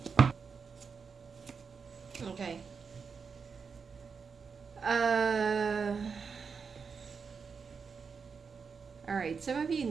Okay. All right. Some of you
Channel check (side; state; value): left; quieter; 5.6 dB